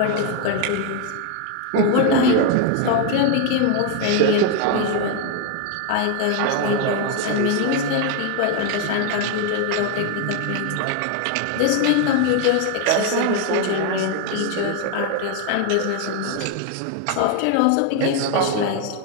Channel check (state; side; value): different; both; correlation 0.01